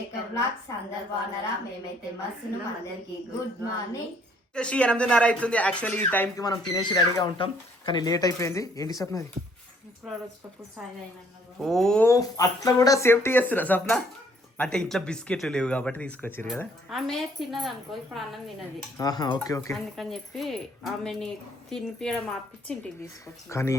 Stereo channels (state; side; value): normal; both; correlation 0.63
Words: blogs. అందరు బాగున్నారా? మేమైతే మస్తును. అందరికి గుడ్ మార్నింగ్. 8:30 అవుతుంది. యాక్చువల్లీ ఈ టైంకి మనం తినేసి రెడీగా ఉంటాం, కానీ లేట్ అయిపోయింది. ఏంటి సప్న అది? ఓ అట్లా కూడా సేఫ్టీ చేస్తున్నా సప్న. అంటే ఇంట్లో బిస్కెట్లు లేవు కాబట్టి తీసుకొచ్చారు కదా. ఆమె తిన్నది అనుకో, ఇప్పుడు అన్నం తినది. ఓకే ఓకే, అందుకని చెప్పి ఆమెని తినిపించడం ఆపించి ఇంటికి తీసుకొచ్చి. కానీ